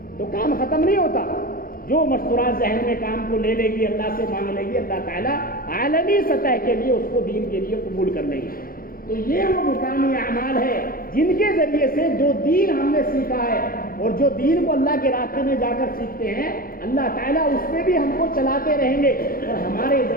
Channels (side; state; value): right; late; 0.42 ms